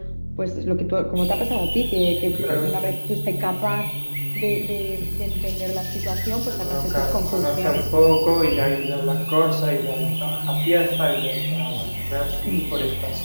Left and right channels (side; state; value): both; inverted; correlation -1.00